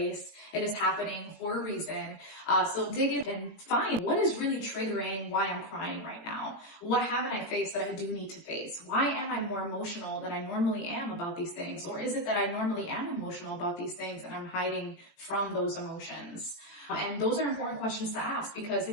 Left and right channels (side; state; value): right; late; 18 ms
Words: it is happening for a reason. So dig in and find what is really triggering why I'm crying right now. What haven't I faced that I do need to face? Why am I more emotional than I normally am about these things? Or is it that I normally am emotional about these things and I'm hiding from those emotions? And those are important questions to ask, because